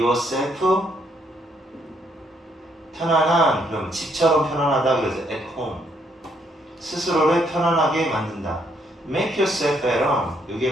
편안한, 그럼 집처럼 편안하다 그래서 at home. 스스로를 편안하게 만든다. make yourself at home.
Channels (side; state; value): both; normal; correlation 0.72